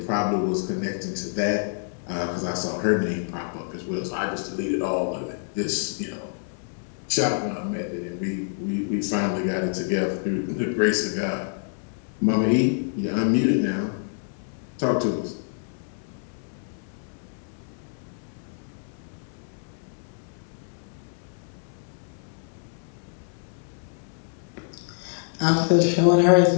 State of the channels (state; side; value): silent; right; 59 dB below the other